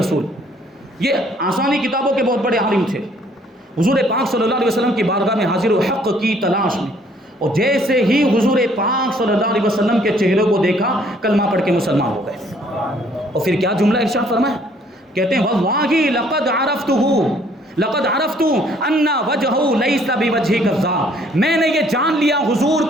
یہ آسانی کتابوں کے بہت بڑے عالم تھے، حضور پاک صلی اللہ علیہ وسلم کی بارگاہ میں حاضر و حق کی تلاش میں، اور جیسے ہی حضور پاک صلی اللہ علیہ وسلم کے چہرے کو دیکھا کلمہ پڑھ کے مسلمان ہو گئے۔ اور پھر کیا جملہ ارشاد فرمایا، کہتے ہیں واللہ لقد عرفت ان وجهه ليس بوجه كذاب، میں نے یہ جان لیا حضور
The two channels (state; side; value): normal; both; correlation 0.62